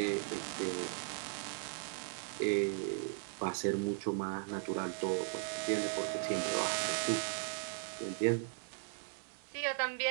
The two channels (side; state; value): left; silent; digital silence